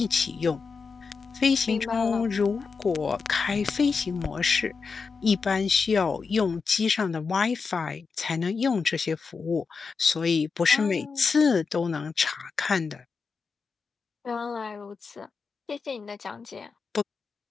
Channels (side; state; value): right; quieter; 5.0 dB